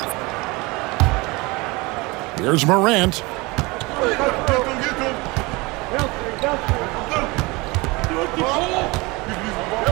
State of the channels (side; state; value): left; quieter; 24.4 dB